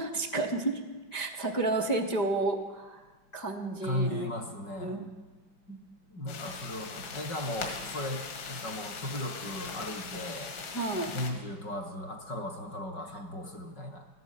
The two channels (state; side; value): late; right; 5.0 ms